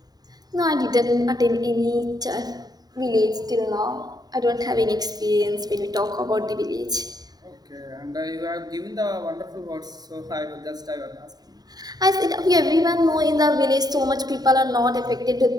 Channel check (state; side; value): late; left; 0.19 ms